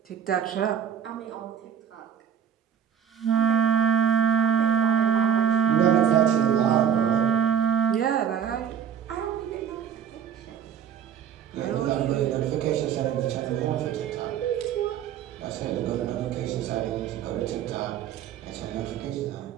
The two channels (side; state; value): left; quieter; 8.5 dB